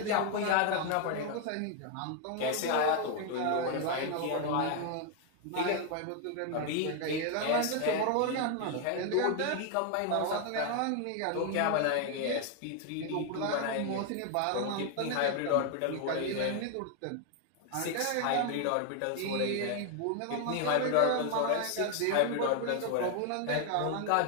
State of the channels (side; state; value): both; different; correlation 0.01